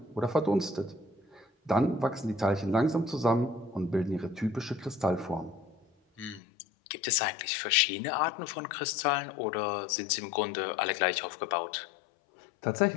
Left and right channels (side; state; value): right; drops out; at 6.4 s